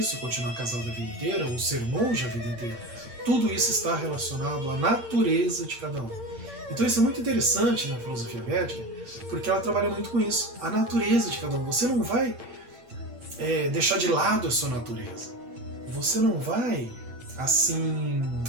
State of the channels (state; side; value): late; left; 8.8 ms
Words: continuar casado a vida inteira, ou ser monge a vida inteira. Tudo isso está relacionado à natureza de cada um. Então isso é muito interessante na filosofia védica, porque ela trabalha muito com isso, a natureza de cada um. Você não vai deixar de lado a sua natureza. Você não vai, assim,